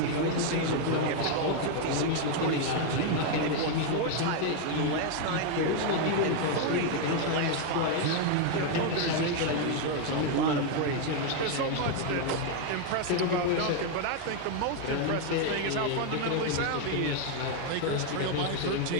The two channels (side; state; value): both; different; correlation 0.01